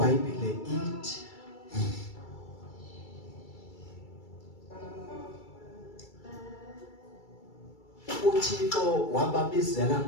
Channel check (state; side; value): late; right; 2.3 ms